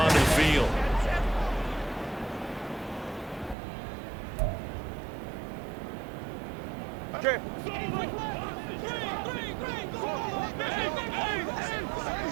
the field. Okay.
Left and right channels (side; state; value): left; drops out; at 3.6 s